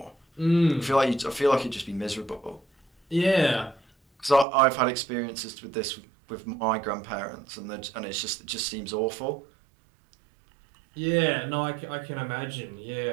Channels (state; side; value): drops out; left; at 4.5 s